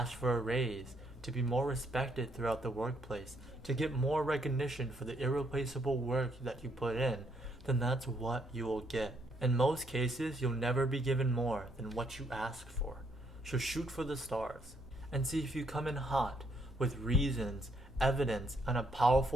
for a raise, to be more respected throughout the workplace, to get more recognition for the irreplaceable work that you put in, then that's what you will get. In most cases, you'll never be given more than what you ask for. So shoot for the stars and see if you come in hot with reasons, evidence, and a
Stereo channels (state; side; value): normal; both; correlation 0.72